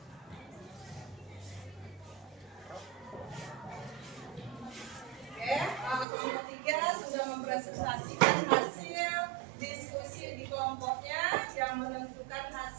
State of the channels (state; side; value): drops out; left; at 6.1 s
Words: Oke, kelompok 3 sudah mempresentasikan hasil diskusi di kelompoknya yang menentukan